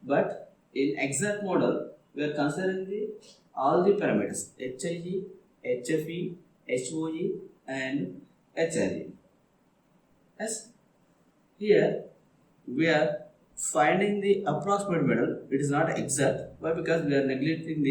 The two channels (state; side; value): identical; both; correlation 1.00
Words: but in exact model we are considering all the parameters HIG, HFE, HOE and HRE. Yes, here we are finding the approximate model. It is not exact. Why? Because we are